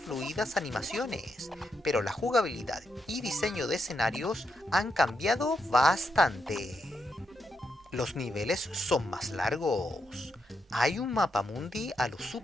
animaciones, pero la jugabilidad y diseño de escenarios han cambiado bastante. Los niveles son más largos. Hay un mapamundi a lo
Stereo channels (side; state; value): both; normal; correlation 0.82